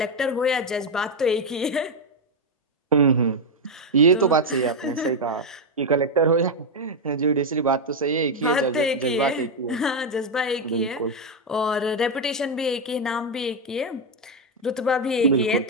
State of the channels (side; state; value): both; normal; correlation 0.04